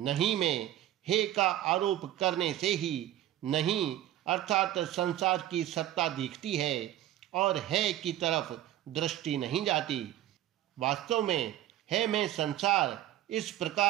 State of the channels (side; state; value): left; quieter; 13.3 dB